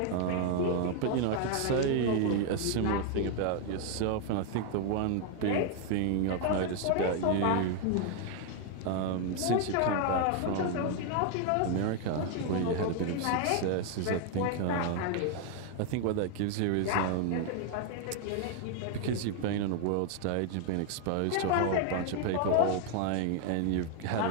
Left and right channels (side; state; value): both; different; correlation 0.00